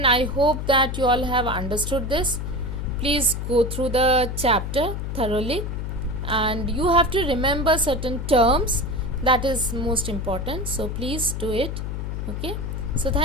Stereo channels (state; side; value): noise; left; hum, 4 dB below the sound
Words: I hope that you all have understood this. Please go through the chapter thoroughly, and you have to remember certain terms. That is most important. So please do it. Okay. So